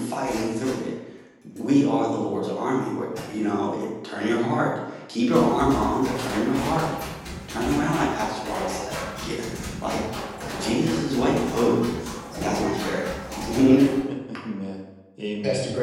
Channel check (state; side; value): identical; both; correlation 1.00